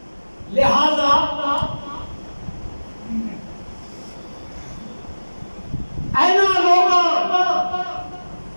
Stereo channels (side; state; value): both; inverted; correlation -1.00